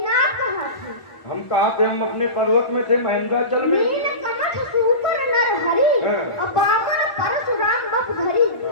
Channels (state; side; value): late; right; 1.5 ms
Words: आप कहाँ थे? हम कहाँ थे? हम अपने पर्वत में थे, महेंद्राचल में। नील कमठ सुपर नर हरि, अपावर परशुराम बप धरि।